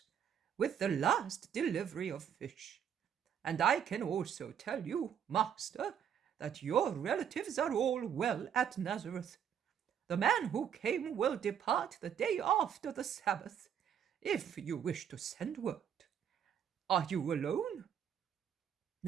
with the last delivery of fish. And I can also tell you, Master, that your relatives are all well at Nazareth. The man who came will depart the day after the Sabbath, if you wish to send word. Are you alone?"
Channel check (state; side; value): quieter; left; 8.7 dB